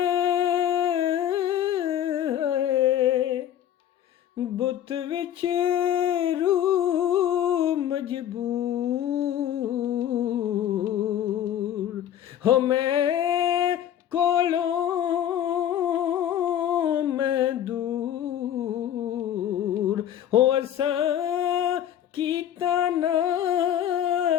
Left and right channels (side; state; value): right; quieter; 10.7 dB